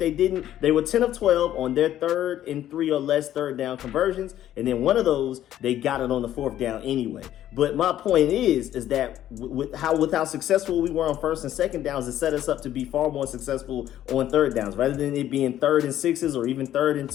didn't, they were 10 of 12 on their 3rd and 3 or less third down conversions. And then one of those, they got it on the 4th down anyway. But my point is that with how successful we were on 1st and 2nd downs, it set us up to be far more successful on 3rd downs. Rather than it being 3rd and 6s or even 3rd and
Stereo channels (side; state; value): right; quieter; 12.2 dB